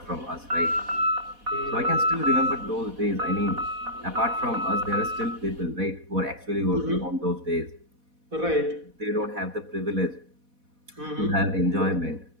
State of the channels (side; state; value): left; late; 4.1 ms